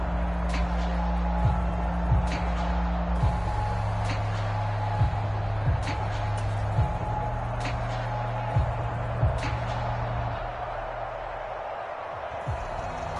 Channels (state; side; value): identical; both; correlation 1.00